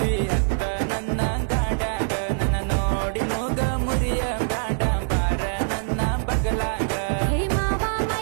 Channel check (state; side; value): silent; left; digital silence